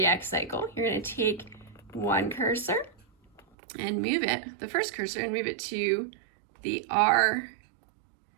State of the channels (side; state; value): left; drops out; at 3.4 s